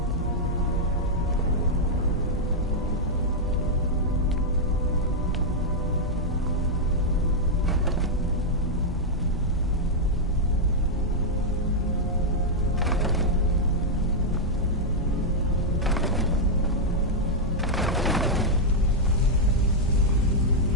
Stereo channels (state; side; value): normal; both; correlation -0.04